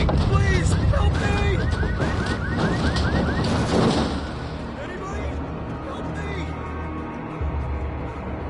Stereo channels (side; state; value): both; identical; correlation 1.00